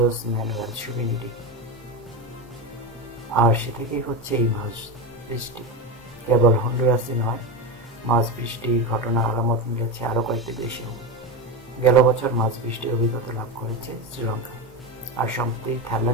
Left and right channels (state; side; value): normal; both; correlation 0.17